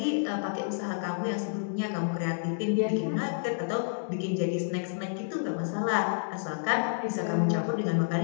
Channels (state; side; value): silent; right; digital silence